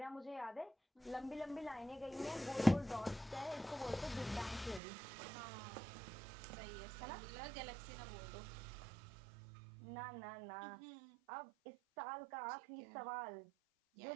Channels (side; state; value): left; drops out; at 4.8 s